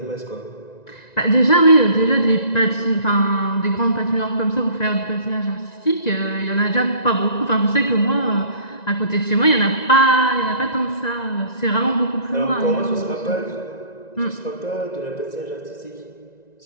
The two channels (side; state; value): right; late; 1.9 ms